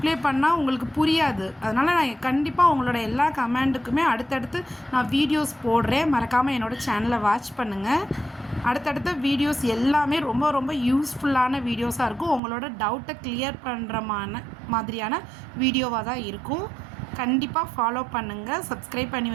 பண்ணால் உங்களுக்கு புரியாது. அதனால் நான் கண்டிப்பாக உங்களோட எல்லா கமெண்ட்டுக்குமே அடுத்தடுத்து நான் வீடியோஸ் போடுறேன். மறக்காமல் என்னோடய சேனலை வாட்ச் பண்ணுங்கள். அடுத்தடுத்த வீடியோஸ் எல்லாமே ரொம்ப ரொம்ப யூஸ்ஃபுல்லான வீடியோஸாக இருக்கும். உங்களோட டவுட்டை கிளியர் பண்ணுற மாதிரியான வீடியோவாக தான் இருக்கும். கண்டிப்பாக ஃபாலோ பண்ணுங்கள், சப்ஸ்கிரைப் பண்ணி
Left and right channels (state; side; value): drops out; left; at 12.4 s